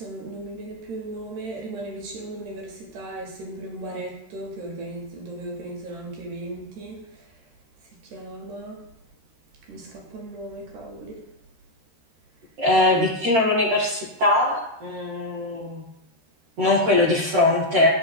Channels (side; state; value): left; late; 13 ms